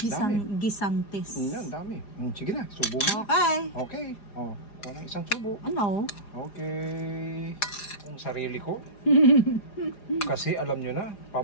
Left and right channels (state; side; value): late; right; 4.9 ms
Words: Yan, dami. Sige na, subo mo. Okay. Okay. Oh, walang isang subo. Ano? Okay. Ang sarili ko. Kasi alam nyo na,